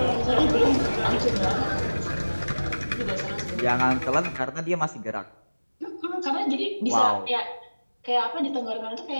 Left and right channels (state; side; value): inverted; both; correlation -1.00